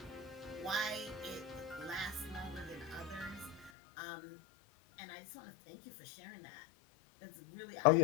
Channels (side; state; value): right; drops out; at 3.7 s